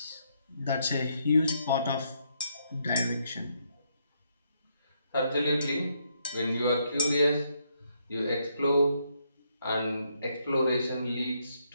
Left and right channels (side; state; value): both; inverted; correlation -0.75